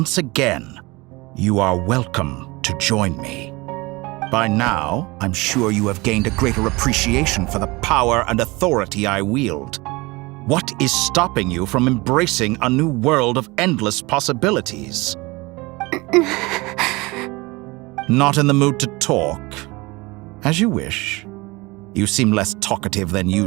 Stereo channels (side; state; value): left; quieter; 23.6 dB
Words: again, you are welcome to join me. By now, I'm sure you have gained a greater appreciation for the power and authority I wield. What is stopping you from embracing a new world of endless possibilities? Not in the mood to talk? As you wish. You seem less talkative than